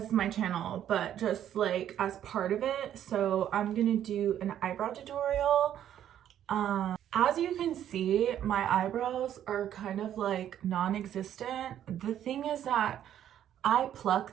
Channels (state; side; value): quieter; left; 10.7 dB